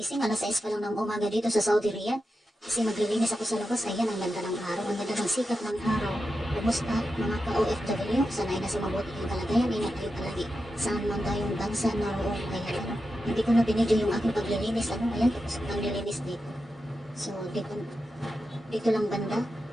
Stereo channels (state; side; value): normal; both; correlation 0.89